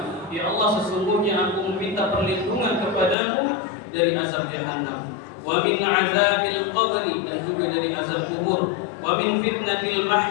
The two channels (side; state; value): right; drops out; at 3.2 s